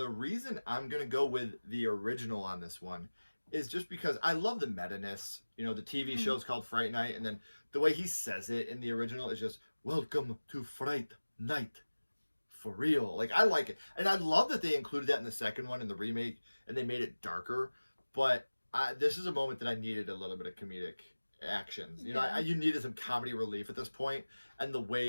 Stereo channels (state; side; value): inverted; both; correlation -1.00